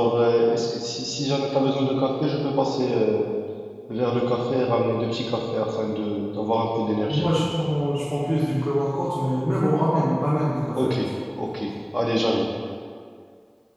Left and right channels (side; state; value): both; identical; correlation 1.00